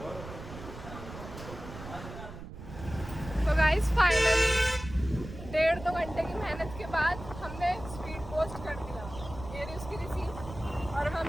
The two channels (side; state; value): right; noise; rumble, 12 dB below the sound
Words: तो गाइस फाइनली 1.5-2 घंटे की मेहनत के बाद हमने स्पीड पोस्ट कर दिया, ये रही उसकी रिसीप्ट। और हम